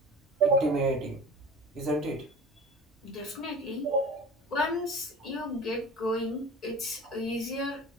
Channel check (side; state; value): both; normal; correlation 0.38